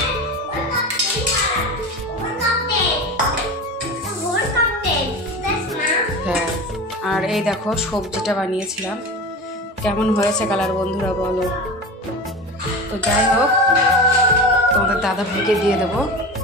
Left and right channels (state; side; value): normal; both; correlation 0.30